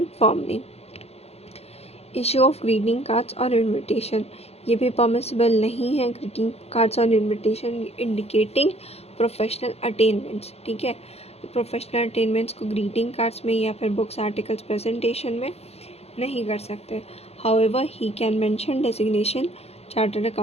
firm name. Issue of greeting cards और invitation, ये भी permissible नहीं है। ग्रीटिंग कार्ड्स और इनविटेशन इंडिकेटिंग प्रोफेशनल अटेनमेंट्स, ठीक है। तो प्रोफेशनल अटेनमेंट्स को ग्रीटिंग कार्ड्स में या फिर बुक्स आर्टिकल्स प्रेजेंटेशन में नहीं कर सकते। However he can mention designation, chartered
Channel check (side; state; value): right; late; 0.30 ms